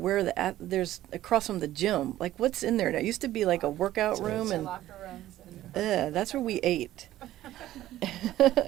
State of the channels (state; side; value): quieter; left; 14.1 dB